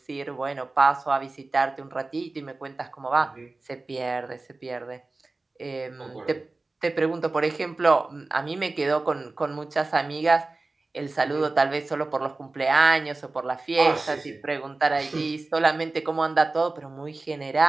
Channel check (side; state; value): left; quieter; 3.3 dB